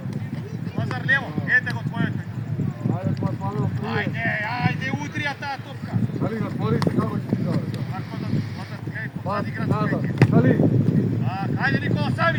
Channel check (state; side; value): identical; both; correlation 1.00